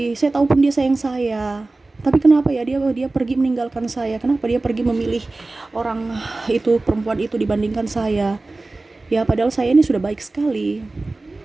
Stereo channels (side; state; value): left; quieter; 3.2 dB